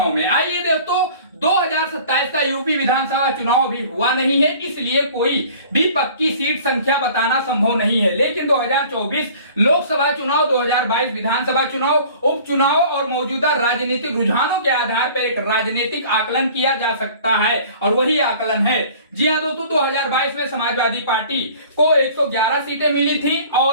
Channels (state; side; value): inverted; both; correlation -0.48